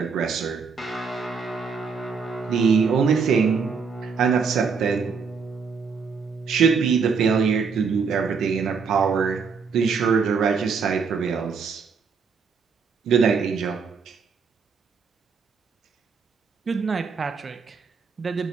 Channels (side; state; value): left; quieter; 5.5 dB